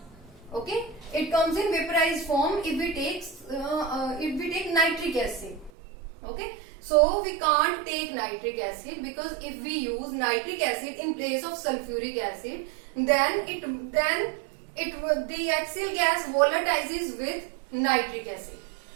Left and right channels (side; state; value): left; drops out; at 5.7 s